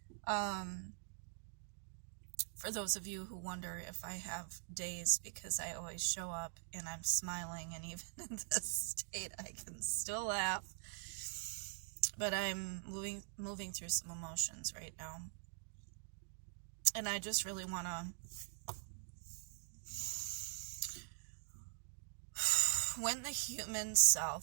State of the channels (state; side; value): silent; left; digital silence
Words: For those of you who wonder if I have days, because I always show up and I'm smiling, and even in this state I can still laugh. But I'm moving through some emotions right now. And I just really wanna when the human